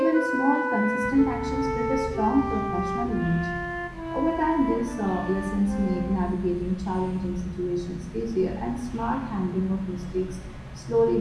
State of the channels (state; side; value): identical; both; correlation 1.00